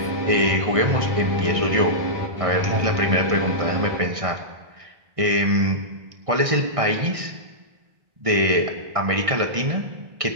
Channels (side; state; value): left; late; 1.6 ms